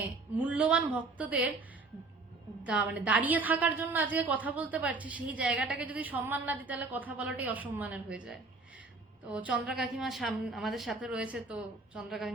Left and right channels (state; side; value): quieter; left; 3.6 dB